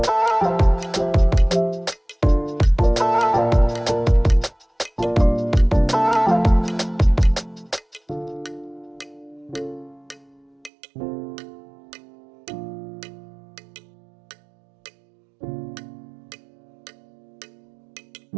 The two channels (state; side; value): drops out; left; at 10.7 s